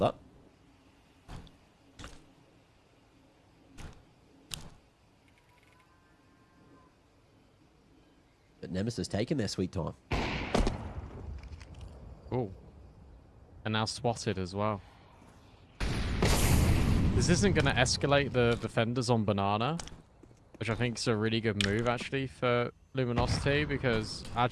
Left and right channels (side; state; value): both; identical; correlation 1.00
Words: But Nemesis taking their sweet time. Ooh. And now spotted as well. This isn't going to escalate the defenders on Banana, which I think is a really good move, actually, for Luminosity, because,